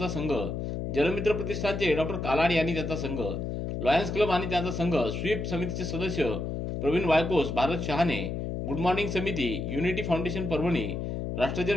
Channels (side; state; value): left; noise; hum, 3 dB below the sound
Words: संघ, जलमित्र प्रतिष्ठानचे डॉक्टर कालाड आणि त्यांचा संघ, लॉयन्स क्लब आणि त्यांचा संघ, स्वीप समितीचे सदस्य प्रवीण वायकोस, भारत शहाणे, गुड मॉर्निंग समिती, unity foundation Parbhani,